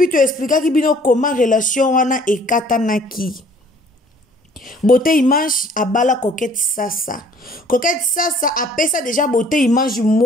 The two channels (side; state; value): both; normal; correlation 0.56